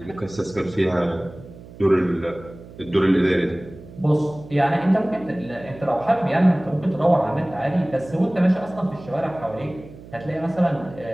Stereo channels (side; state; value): right; noise; hum, 18 dB below the sound